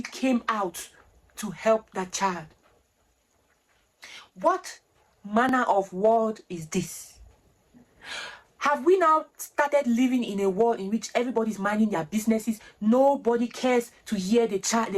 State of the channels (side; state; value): both; identical; correlation 1.00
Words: came out to help that child. What manner of world is this? Have we now started living in a world in which everybody's minding their businesses? Nobody cares to hear the child,